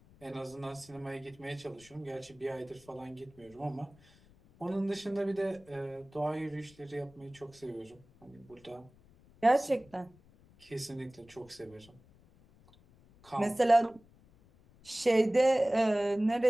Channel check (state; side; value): noise; left; rumble, 27 dB below the sound